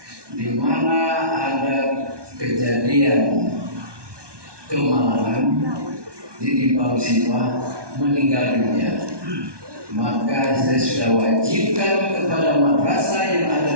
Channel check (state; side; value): late; left; 1.2 ms